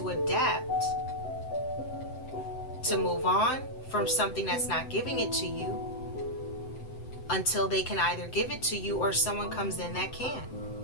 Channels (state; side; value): late; right; 7.8 ms